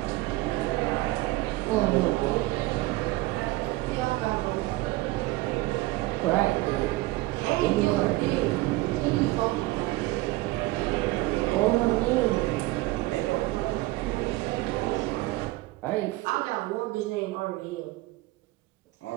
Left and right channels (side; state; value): left; quieter; 19.4 dB